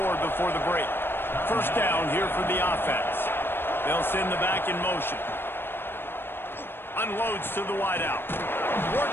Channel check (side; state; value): right; late; 0.10 ms